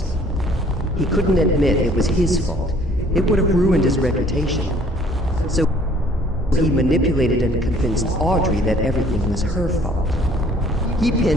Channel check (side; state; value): both; normal; correlation 0.57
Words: He couldn't admit it was his fault. It would have ruined his reputation. So he manipulated and convinced Audrey that everything was her fault. He